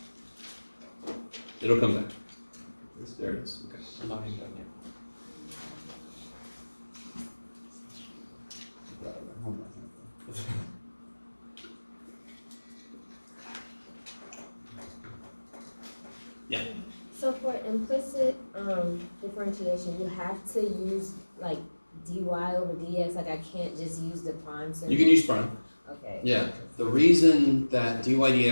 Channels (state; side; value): inverted; both; correlation -1.00